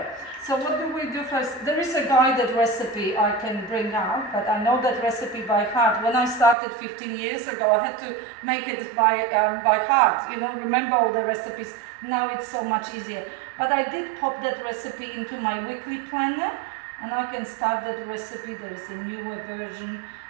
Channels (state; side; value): drops out; left; at 6.6 s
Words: So what do we do first? There is a guided recipe I can bring out, but I know that recipe by heart. When I started 15 years ago, I had to make it by heart, you know, remember all the recipes. Now it's so much easier. But I did pop that recipe into my weekly planner, and I can start that recipe. There is a newer version.